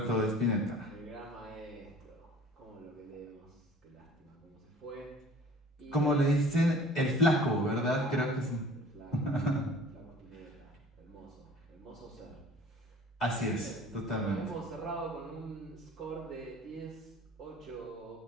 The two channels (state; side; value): normal; both; correlation 0.48